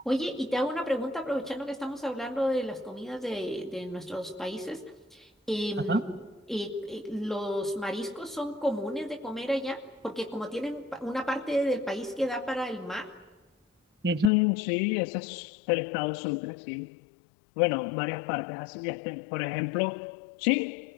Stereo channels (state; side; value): drops out; right; at 14.3 s